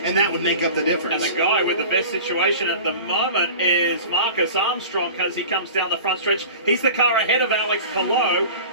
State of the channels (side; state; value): both; inverted; correlation -0.38